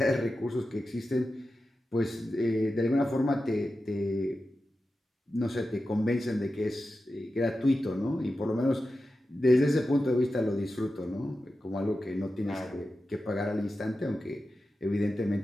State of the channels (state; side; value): normal; both; correlation 0.92